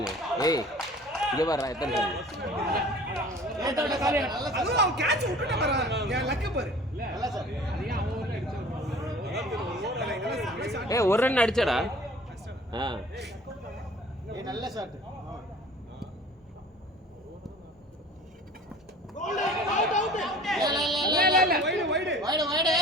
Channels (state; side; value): normal; both; correlation 0.46